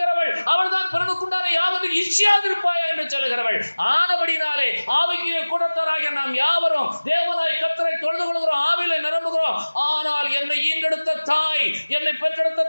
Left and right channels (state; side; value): inverted; both; correlation -1.00